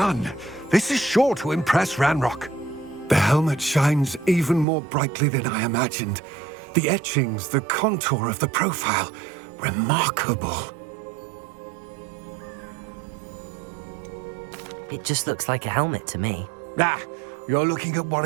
This is sure to impress Ranrock. The helmet shines even more brightly than I imagined. The etchings, the contour of the profile, remarkable. It just looks like a helmet to me. Ah, you're looking at what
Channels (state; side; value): drops out; left; at 4.7 s